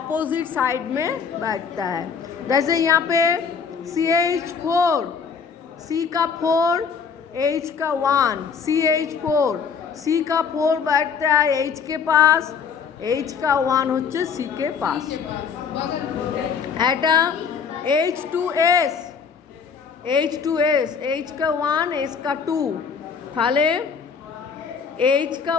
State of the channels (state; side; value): quieter; right; 6.2 dB